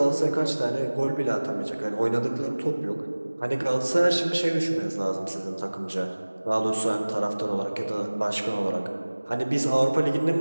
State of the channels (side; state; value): both; inverted; correlation -1.00